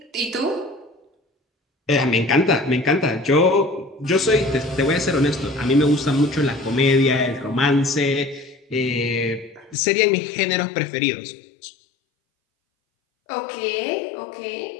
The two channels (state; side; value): drops out; right; at 9.8 s